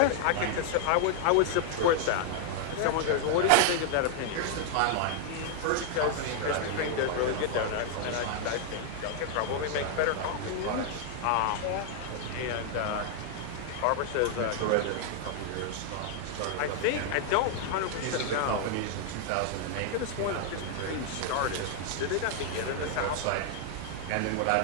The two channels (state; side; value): different; both; correlation 0.00